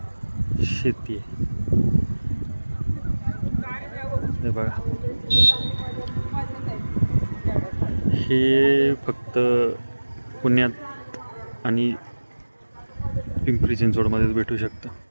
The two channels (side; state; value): both; inverted; correlation -1.00